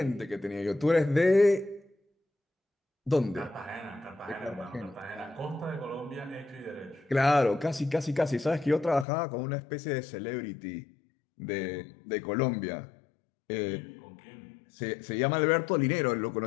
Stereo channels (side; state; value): right; drops out; at 9.1 s